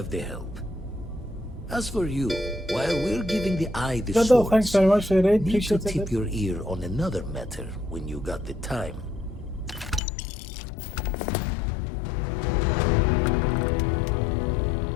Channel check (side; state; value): right; drops out; at 10.0 s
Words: the help. As for you, while we're giving the eye the Dodo, thanks swords, very much for the raid. need to Appreciate tip it. your ear on another matter when you got the time.